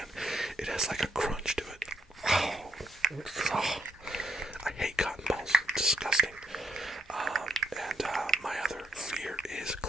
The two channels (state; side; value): normal; both; correlation 0.77